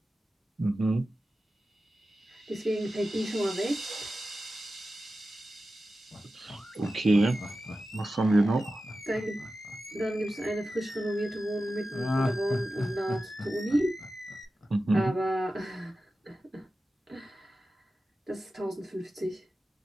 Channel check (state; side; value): normal; both; correlation 0.93